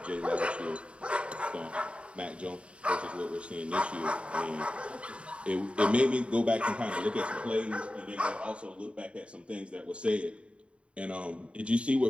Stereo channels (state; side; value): late; left; 0.059 ms